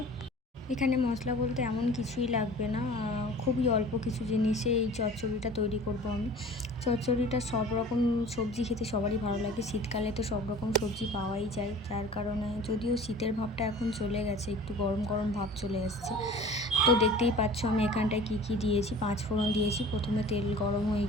এখানে মশলা বলতে এমন কিছুই লাগবে না, খুবই অল্প কিছু জিনিসে এই চচ্চড়িটা তৈরি করব আমি। চচ্চড়িটা সব রকম সবজি খেতে সবারই ভালো লাগে। শীতকালে তো সব রকম সবজি পাওয়াই যায়, যার কারণে যদিও শীতের ভাবটা এখন চলে গেছে, একটু গরম গরম ভাব চলে আসছে। তো দেখতেই পাচ্ছ আমি এখানটায় কী দিয়েছি। 5 ফোড়ন দিয়েছি প্রথমে, তেল গরম হয়ে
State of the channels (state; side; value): normal; both; correlation 0.43